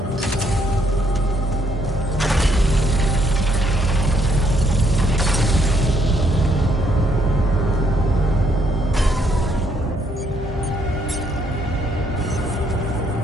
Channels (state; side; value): normal; both; correlation 0.71